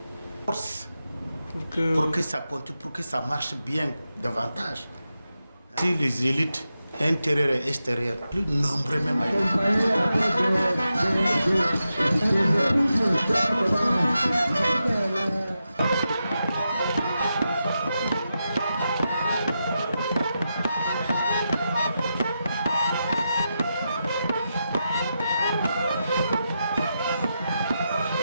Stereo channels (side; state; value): both; inverted; correlation -0.88